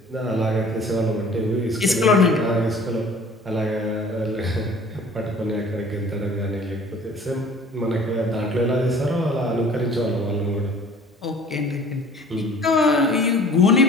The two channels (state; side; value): normal; both; correlation 0.49